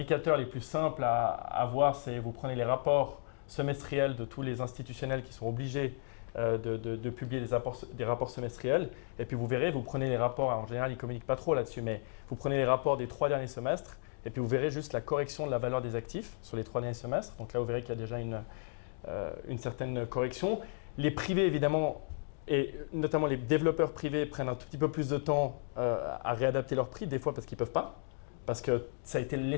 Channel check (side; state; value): right; silent; digital silence